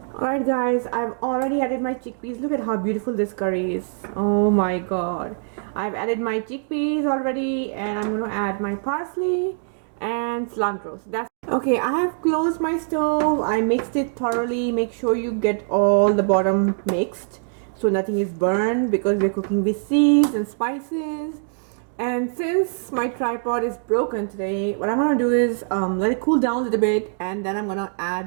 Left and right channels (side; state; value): left; silent; digital silence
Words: Alright guys, I've already added my chickpeas. Look at how beautiful this curry is. Oh my god. I've added my chickpeas already, and I'm going to add my parsley and cilantro. So that's okay. I have closed my stove. I mixed it thoroughly. Make sure you get all the bottom mixed so nothing is burned, because we're cooking with seeds and spices. And since my tripod is broken today, what I'm going to do is let it cool down a little bit, and then I'm going to